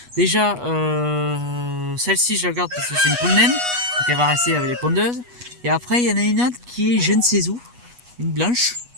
Déjà celle-ci je la garde parce que c'est une poule naine. Donc elle va rester avec les pondeuses. Et après il y en a une autre qui est je ne sais où. Une blanche.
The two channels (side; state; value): left; late; 8.2 ms